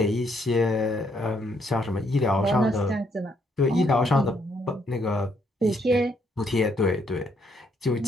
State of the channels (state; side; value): normal; both; correlation 0.72